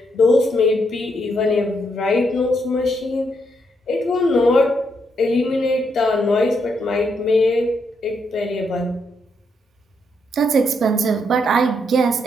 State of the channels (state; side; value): normal; both; correlation 0.77